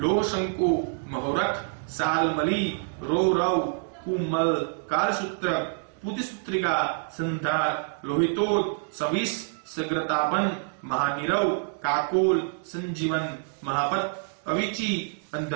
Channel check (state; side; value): silent; left; 59 dB below the other